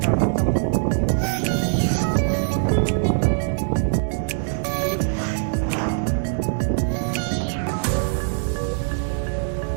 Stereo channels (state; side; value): silent; left; digital silence